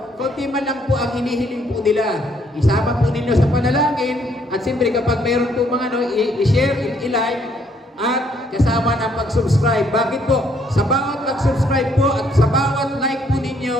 konti man lang po ang hinihiling po nila. Isama po ninyo sa panalangin at siyempre kapag mayroon po mga i-share, i-like, at kasama ng pag-subscribe. Bakit po? Sa bawat pag-subscribe po at sa bawat like po ninyo,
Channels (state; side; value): normal; both; correlation 0.68